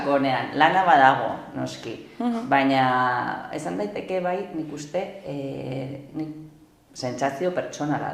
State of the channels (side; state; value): both; identical; correlation 1.00